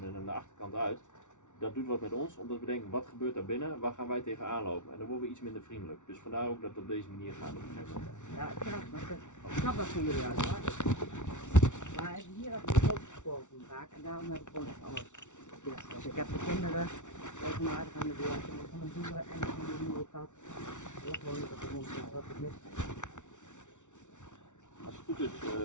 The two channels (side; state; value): right; late; 0.85 ms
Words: en aan de achterkant uit, dat doet wat met ons, omdat we denken, wat gebeurt daar binnen, waar gaan wij tegenaan lopen? En dan worden we iets minder vriendelijk. Dus vandaar ook dat het op deze manier gaat op een gegeven moment. Ja, ik snap dat van jullie uit. Maar hier heb ik de grote gesproken vaak en daarom heb ik gewoon echt alles dicht. Dus ik heb de kinderen regelmatig aan de deur, ik heb van de boeren en van de nieuwe kat. Ik gewoon niet op de hond, dat het mis. Als het goed is,